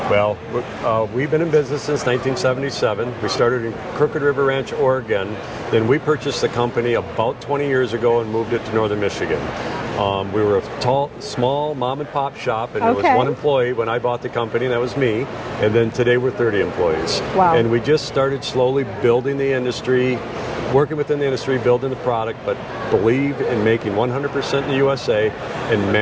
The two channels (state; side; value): identical; both; correlation 1.00